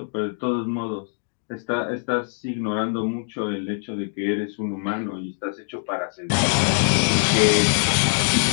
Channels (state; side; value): silent; right; digital silence